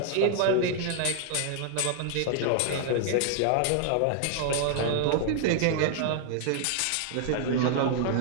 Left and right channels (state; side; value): different; both; correlation 0.00